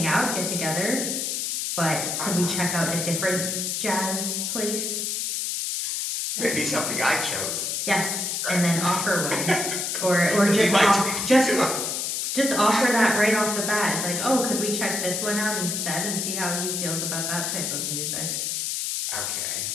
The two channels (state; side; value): noise; left; hiss, 1 dB below the sound